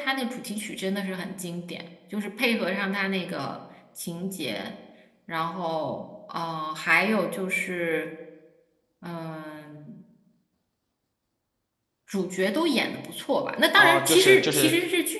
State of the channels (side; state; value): both; identical; correlation 1.00